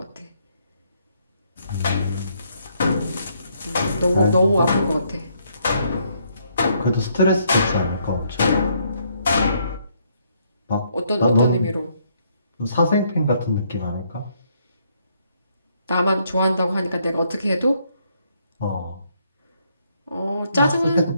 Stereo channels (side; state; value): both; inverted; correlation -0.71